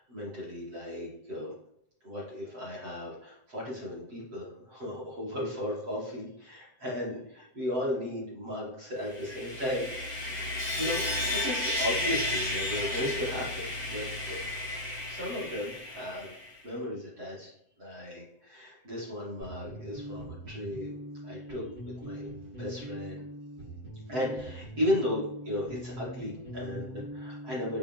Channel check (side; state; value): left; late; 7.8 ms